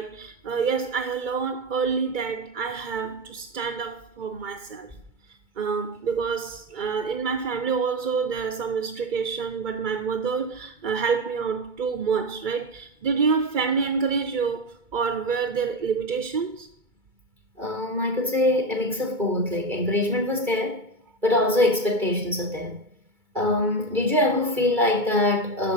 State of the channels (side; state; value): left; late; 2.2 ms